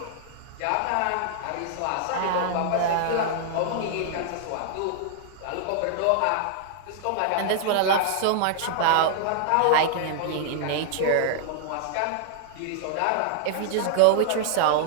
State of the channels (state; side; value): different; both; correlation -0.01